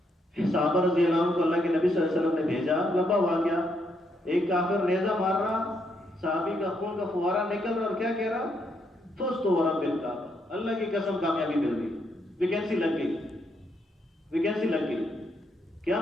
صحابہ رضی اللہ عنہ کو اللہ کے نبی صلی اللہ علیہ وسلم نے بھیجا. لمبا واقعہ، ایک کافر نیزہ مار رہا، صحابی کا خون کا فوارہ نکل رہا اور کیا کہہ رہا؟ فزت ورب الکعبہ، اللہ کی قسم کامیابی مل گئی، ویکینسی لگ گئی، ویکینسی لگ گئی. کیا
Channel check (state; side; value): normal; both; correlation 0.76